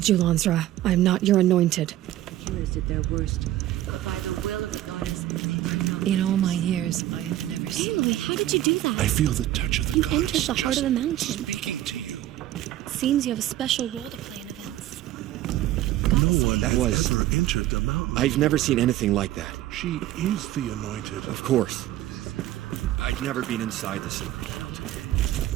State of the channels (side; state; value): left; quieter; 14.0 dB